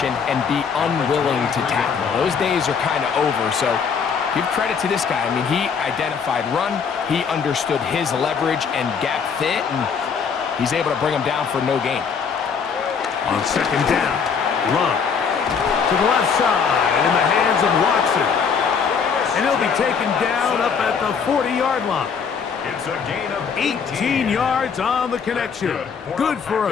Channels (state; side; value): quieter; right; 6.3 dB